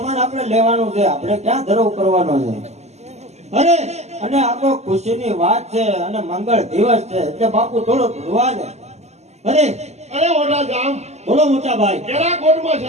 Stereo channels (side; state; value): left; late; 0.32 ms